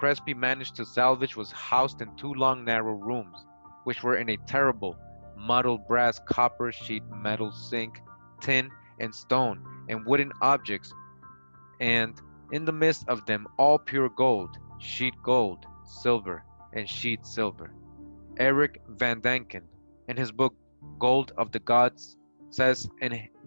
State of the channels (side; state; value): both; inverted; correlation -1.00